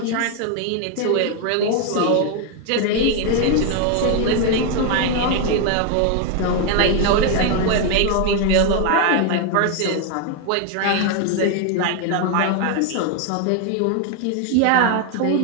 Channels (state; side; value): different; both; correlation 0.01